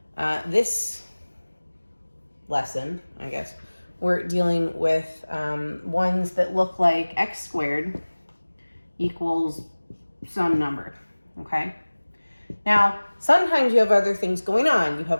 This lesson, I guess, we're dealing with ones that look like x squared equals some number, okay? Now, sometimes you have other things going on. You have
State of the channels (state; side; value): inverted; both; correlation -1.00